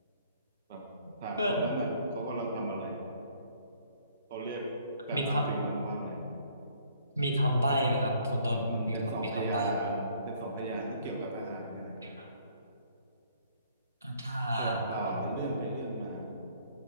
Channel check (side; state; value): both; inverted; correlation -0.62